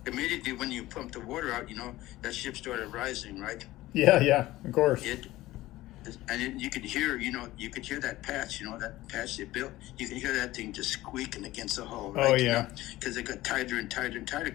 Immediately when you pump the water out, that ship started rising, right? Yeah. Of course. You could hear, that patch, that patch they built. You could hear that thing just squeaking against the hull, right? Oh yeah. Because it got tighter and tighter and tighter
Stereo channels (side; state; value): right; quieter; 17.0 dB